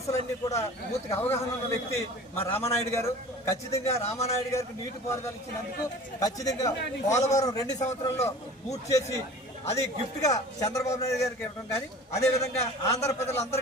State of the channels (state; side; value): normal; both; correlation 0.41